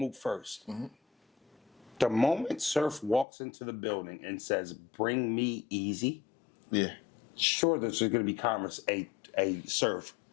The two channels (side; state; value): right; drops out; at 3.2 s